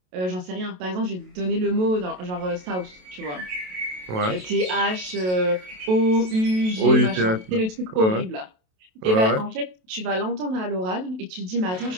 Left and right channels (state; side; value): late; left; 27 ms